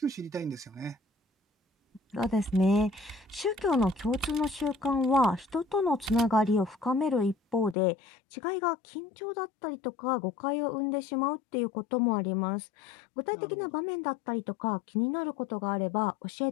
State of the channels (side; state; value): right; drops out; at 7.8 s